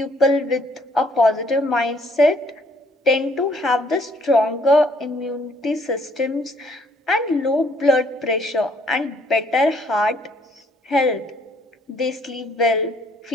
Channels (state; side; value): normal; both; correlation 0.64